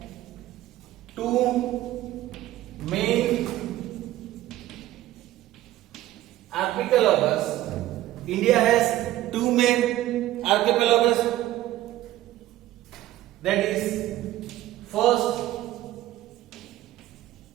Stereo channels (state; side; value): quieter; left; 14.9 dB